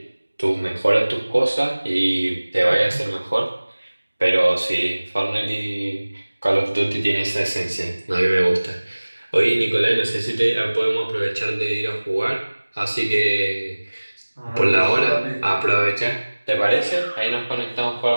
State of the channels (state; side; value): inverted; both; correlation -1.00